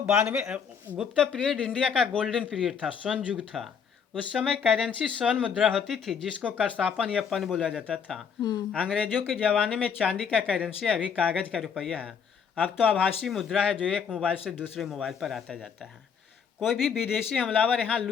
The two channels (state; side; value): quieter; right; 6.9 dB